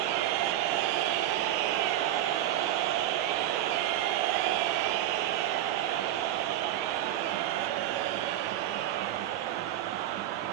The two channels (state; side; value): quieter; left; 12.6 dB